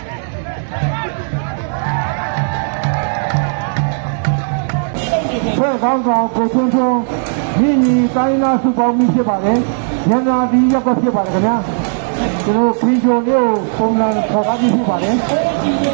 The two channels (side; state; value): left; silent; digital silence